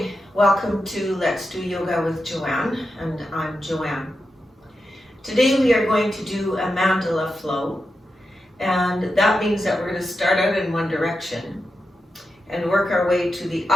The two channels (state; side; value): normal; both; correlation 0.89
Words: Welcome to Let's Do Yoga with Joanne, and I'm Joanne. Today we are going to do a mandala flow, and that means that we're going to start out in one direction and work our way to the